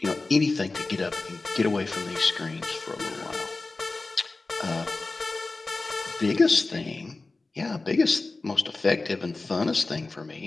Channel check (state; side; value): quieter; right; 3.5 dB